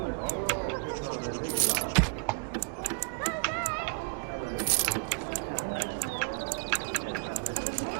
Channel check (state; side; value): quieter; left; 35.5 dB